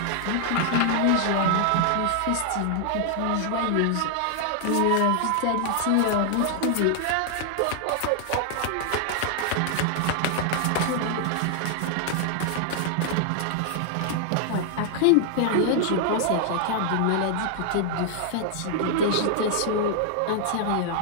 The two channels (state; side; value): different; both; correlation 0.00